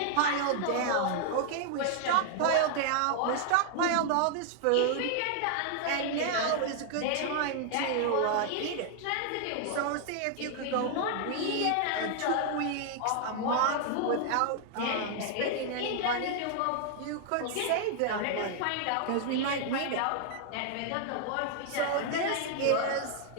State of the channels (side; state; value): both; different; correlation 0.00